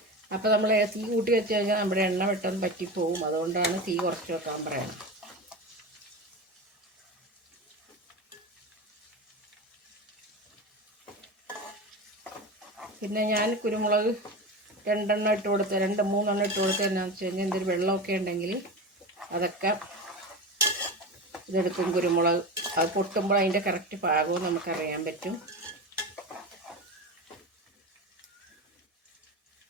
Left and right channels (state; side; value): normal; both; correlation 0.25